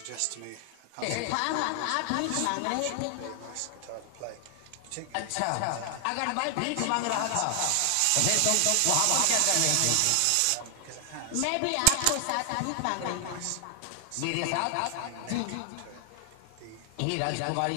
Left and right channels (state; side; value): different; both; correlation 0.00